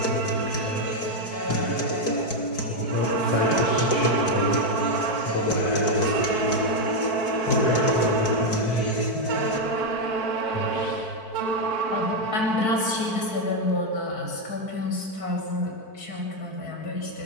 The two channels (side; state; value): right; late; 4.5 ms